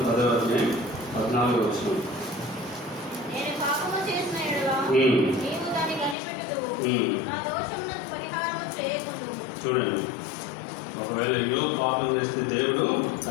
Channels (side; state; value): right; drops out; at 6.2 s